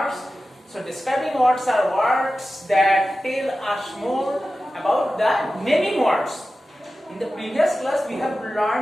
So, describing words are words that tell us more about the naming words. In the previous class, we have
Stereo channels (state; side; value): normal; both; correlation 0.94